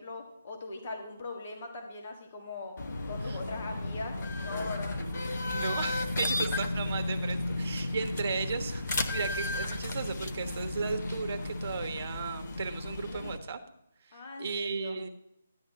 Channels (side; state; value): both; inverted; correlation -0.77